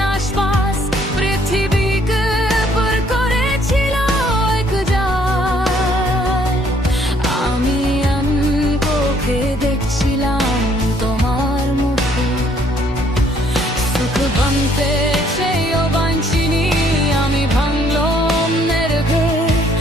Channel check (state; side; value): normal; both; correlation 0.65